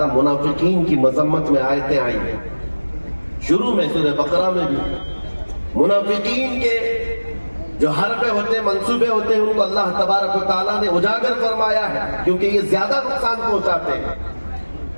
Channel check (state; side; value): inverted; both; correlation -1.00